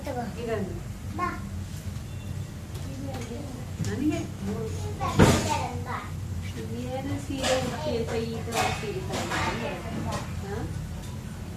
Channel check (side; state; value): both; identical; correlation 1.00